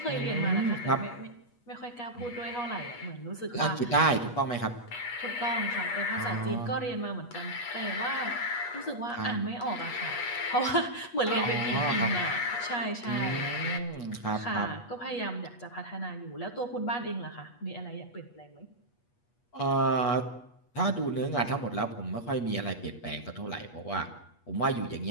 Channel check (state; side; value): late; right; 8.3 ms